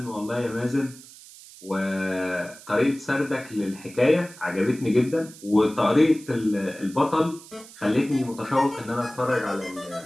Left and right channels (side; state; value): right; noise; hiss, 19 dB below the sound